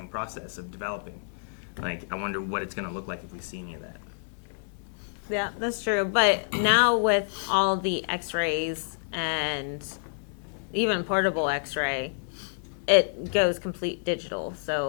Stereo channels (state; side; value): silent; right; digital silence